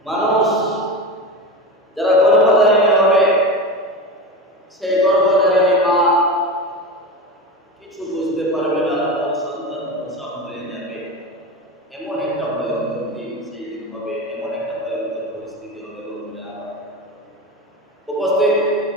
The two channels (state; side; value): normal; both; correlation 0.24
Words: মানুষ যারা গর্ভধারিণী হবে, সেই গর্ভধারিণী মা কিছু বুঝতে পারবে না, তার সন্তান প্রসব হয়ে যাবে। এমন একটা ভয়ঙ্কর দিন সেই দিন হবে, এমন একটা ভয়ঙ্কর পরিস্থিতি হবে। উপস্থিত